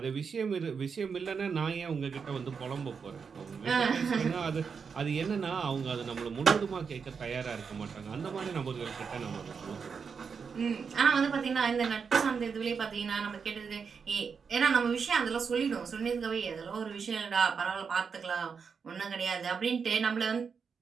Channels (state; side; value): quieter; left; 5.9 dB